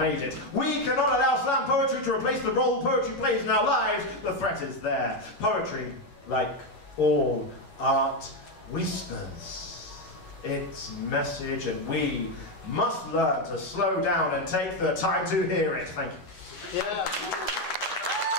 it. We cannot allow slam poetry to replace the role poetry plays in our lives. The threat is there. Poetry, like all art, whispers its message, and we must learn to slow down and take the time to hear it. Thank you. Yeah.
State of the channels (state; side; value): late; right; 11 ms